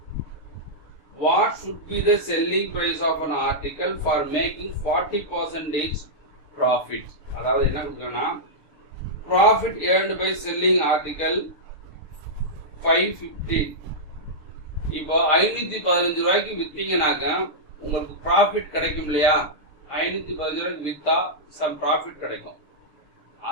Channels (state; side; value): late; right; 6.6 ms